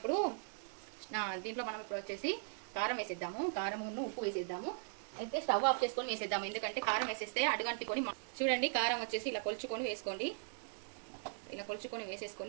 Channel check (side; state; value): left; silent; digital silence